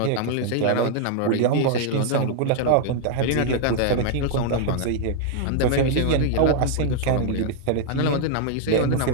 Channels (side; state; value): both; different; correlation -0.01